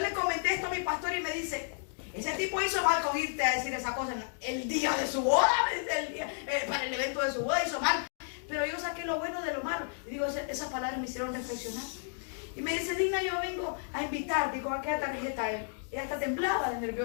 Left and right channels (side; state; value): right; silent; digital silence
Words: comenté esto a mi pastor y me dice, ese tipo hizo mal con irte a decir esa cosa el día de su boda, para el evento de su boda hizo mal. Pero yo saqué lo bueno de lo malo. Y digo, esas palabras me hicieron reflexionar. Y me dice, Digna, yo vengo a invitarte. Digo, ¿a qué tarjeta él? Ella hasta temblaba de